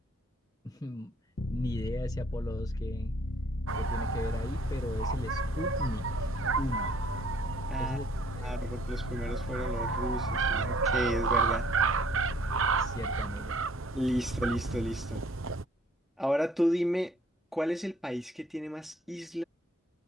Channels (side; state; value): both; normal; correlation 0.60